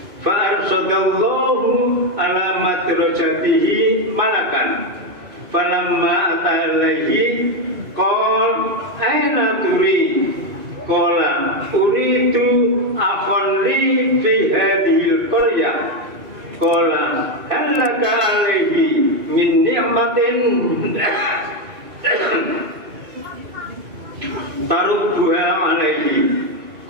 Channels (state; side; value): late; left; 2.4 ms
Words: fa arsadallahu ala madrajatihi malakan falamma atalaihi qol aina turi qala uridu akhon li fi hadhil qaryah qala hal laka alaihi min ni'matin tarubbuha alaihi